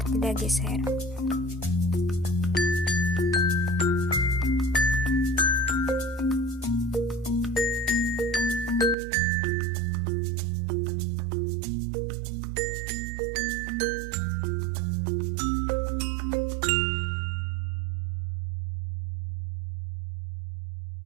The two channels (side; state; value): left; drops out; at 9.0 s